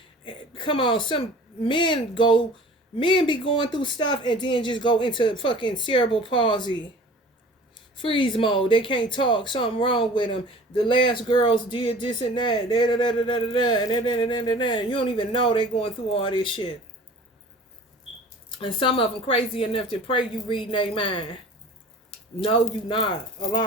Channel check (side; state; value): both; normal; correlation 0.44